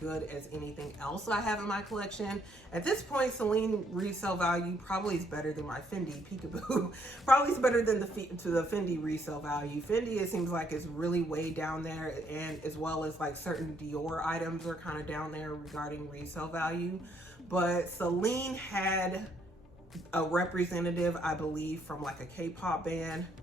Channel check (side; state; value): both; normal; correlation 0.70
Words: as anything else I have in my collection. At this point, Celine resale value probably is better than my Fendi Peekaboo. Probably is better than the Fendi resale value. Fendi, it seems like, is really way down there, and as well as like certain Dior items are kind of down there regarding resale value. But Celine had a representative, I believe, from like a K-pop band.